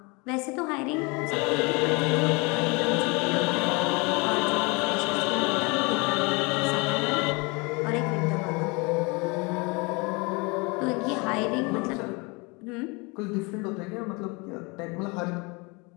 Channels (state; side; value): quieter; right; 28.3 dB